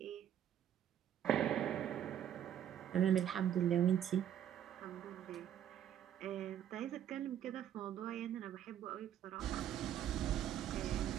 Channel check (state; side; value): quieter; left; 10.3 dB